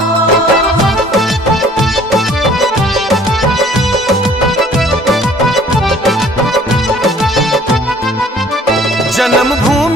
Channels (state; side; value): normal; both; correlation 0.55